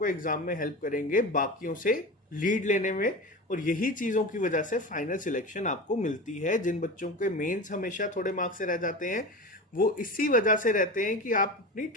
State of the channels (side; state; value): both; normal; correlation 0.28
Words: एग्जाम में हेल्प करेंगे बाकियों से लीड लेने में। और यही चीज़ों की वजह से फाइनल सिलेक्शन आपको मिलती है। जिन बच्चों के मेंस हमेशा थोड़े मार्क्स से रह जाते हैं वो इसी वजह से रहते हैं कि आप अपनी